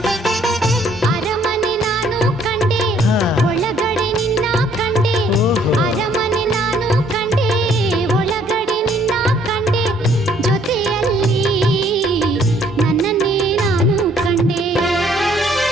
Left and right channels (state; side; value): normal; both; correlation 0.63